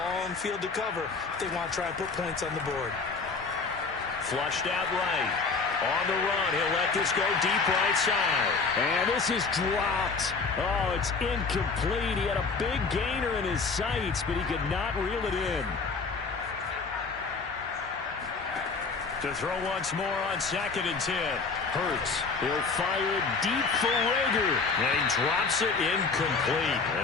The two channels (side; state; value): right; quieter; 4.6 dB